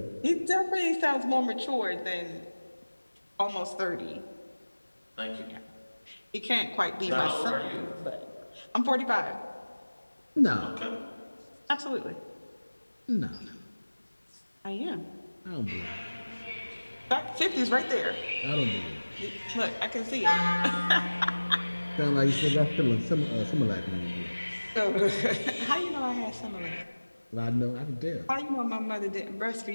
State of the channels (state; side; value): inverted; both; correlation -1.00